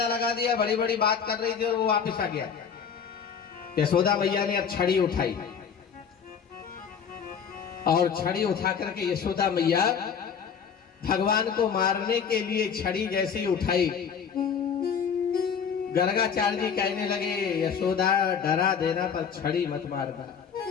लगा दिया, बड़ी बड़ी बात कर रही थी और वो वापिस आ गया। यशोदा मैया ने अब छड़ी उठाई, और छड़ी उठा करके यशोदा मैया भगवान को मारने के लिए छड़ी जैसे ही उठाई, गर्गाचार्य जी कहने लगे, यशोदा डरा देना पर छड़ी मत मारना।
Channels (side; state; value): right; quieter; 7.0 dB